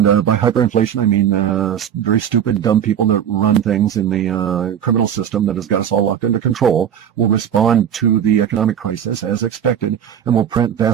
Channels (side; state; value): left; quieter; 9.2 dB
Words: by hyperinflation, I mean very stupid, dumb people that run things in the criminal system that has got us all locked under control will respond to the economic crisis as expected, and will print